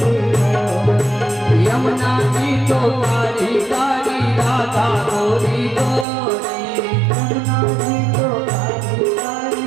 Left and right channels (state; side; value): drops out; left; at 6.1 s